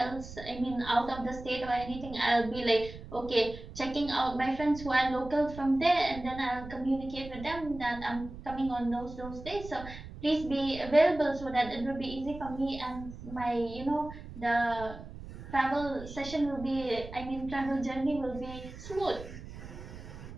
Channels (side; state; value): right; noise; rumble, 13 dB below the sound